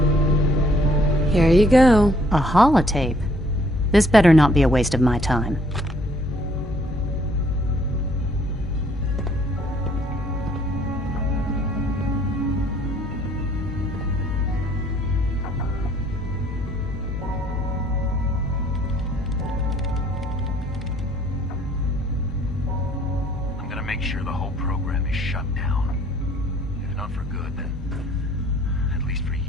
Here you go. A holotape? This better not be a waste of my time. I'm gonna make sure the whole program is shut down. If not for good, then at least for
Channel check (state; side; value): normal; both; correlation 0.63